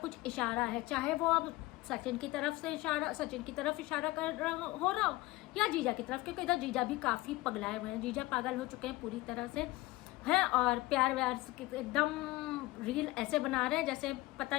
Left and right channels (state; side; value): quieter; right; 19.9 dB